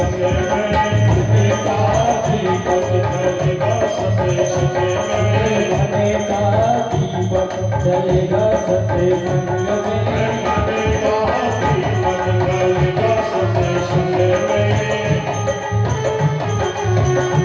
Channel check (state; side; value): identical; both; correlation 1.00